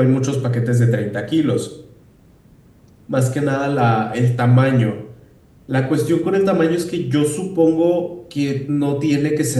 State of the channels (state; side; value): identical; both; correlation 1.00